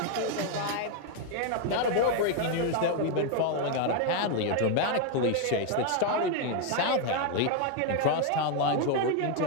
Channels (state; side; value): different; both; correlation 0.01